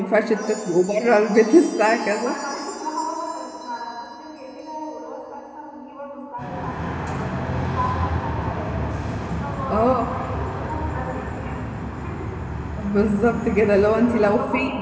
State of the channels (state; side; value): identical; both; correlation 1.00